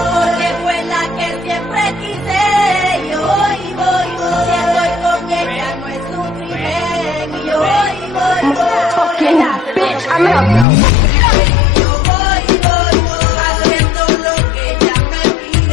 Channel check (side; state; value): right; drops out; at 10.7 s